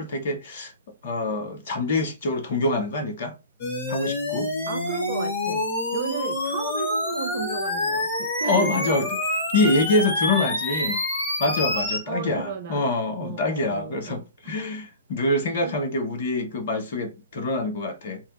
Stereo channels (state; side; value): inverted; both; correlation -0.35